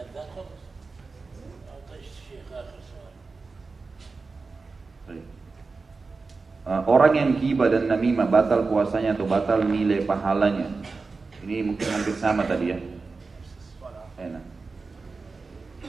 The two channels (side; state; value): left; quieter; 4.2 dB